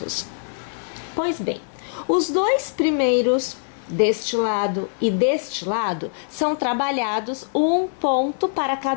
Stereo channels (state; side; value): silent; right; 56 dB below the other